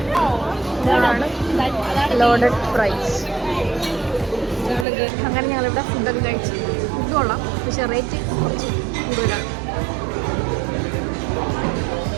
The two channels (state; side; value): drops out; left; at 4.9 s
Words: ഇതാണ് ലോഡഡ് ഫ്രൈസ്. അങ്ങനെ ഞങ്ങളിവിടെ ഫുഡൊക്കെ കഴിച്ചു. ഫുഡ് കൊള്ളാം, പക്ഷെ റേറ്റ് കുറച്ച് കൂടുതലാണ്.